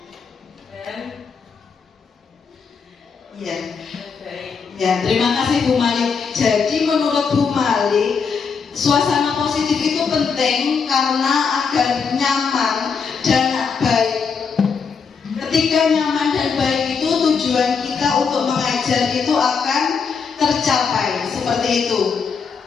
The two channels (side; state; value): right; quieter; 5.7 dB